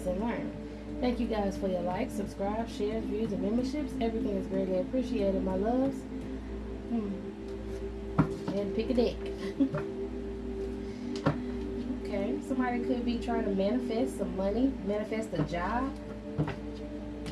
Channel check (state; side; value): identical; both; correlation 1.00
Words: and learn. Thank you guys for your likes, subscribe, shares, views, and memberships. Everything is greatly appreciated, my loves. And pick a deck. Okay, somebody could be trying to manifest some money, manifest a job.